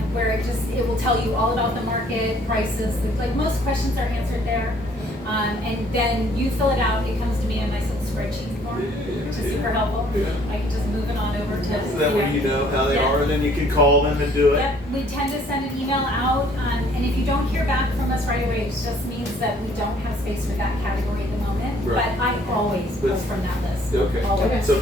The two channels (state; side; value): normal; both; correlation 0.60